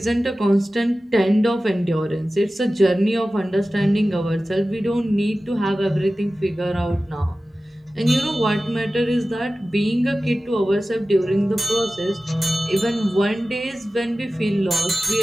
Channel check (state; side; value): normal; both; correlation 0.96